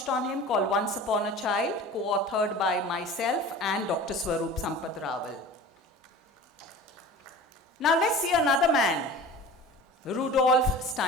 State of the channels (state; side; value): normal; both; correlation 0.38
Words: on him called Once Upon a Child, co-authored by myself and Dr. Swarup Sampath Rawal. Now let's see another man, Rudolf